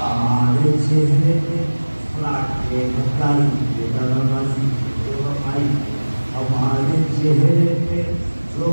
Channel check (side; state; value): both; inverted; correlation -1.00